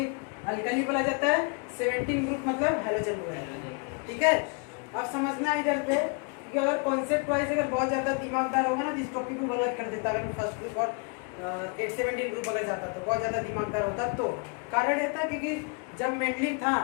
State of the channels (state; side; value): quieter; right; 35.1 dB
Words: अल्कली बोला जाता है, 17 ग्रुप मतलब हैलोजन बोला जाता है। ठीक है, अब समझना है इधर पे कि अगर कॉन्सेप्ट वाइज अगर बहुत ज़्यादा दिमागदार होगा ना तो इस टॉपिक को बर्बाद कर देता। अगर फर्स्ट ग्रुप और 17 ग्रुप अगर जाता तो बहुत ज़्यादा दिमागदार होता। तो कारण ये था क्योंकि जब मेंडलीव था